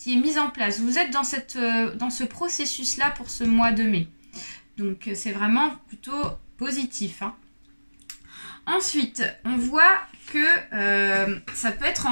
mise en place. Vous êtes dans ce processus-là pour ce mois de mai. Donc, c'est vraiment plutôt positif. Hein. Ensuite, on voit que ça peut être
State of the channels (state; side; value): inverted; both; correlation -1.00